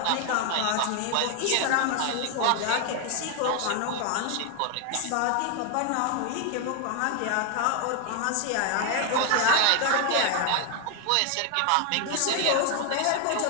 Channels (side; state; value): both; different; correlation 0.01